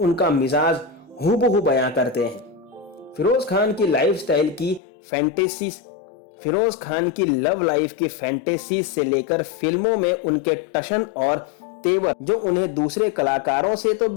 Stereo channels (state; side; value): drops out; right; at 4.8 s